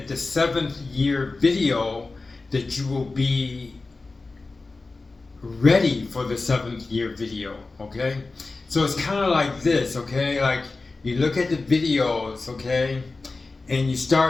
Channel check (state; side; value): quieter; right; 3.6 dB